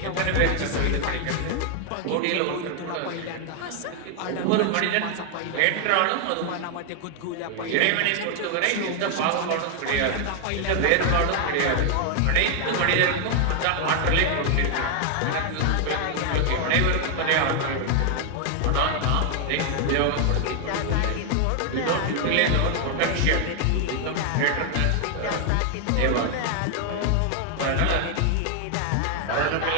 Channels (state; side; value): different; both; correlation 0.00